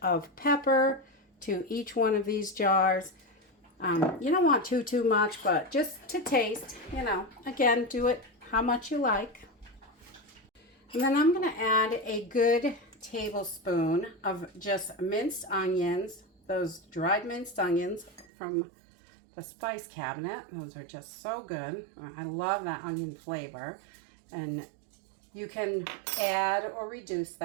of pepper to each one of these jars. You don't want too much, but just to taste, again, do it how much you like. And then I'm going to add a good tablespoon of just minced onions, those dried minced onions from the spice cabinet. Those are just so good. I love that onion flavor. And you can add or reduce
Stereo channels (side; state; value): left; drops out; at 18.2 s